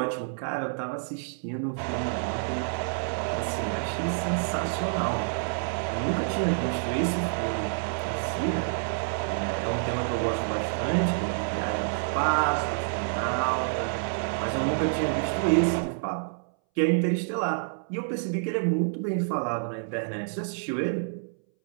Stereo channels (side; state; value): left; silent; 59 dB below the other